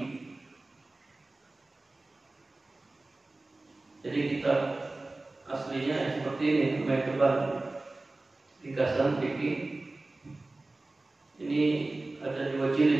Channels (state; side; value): quieter; left; 3.0 dB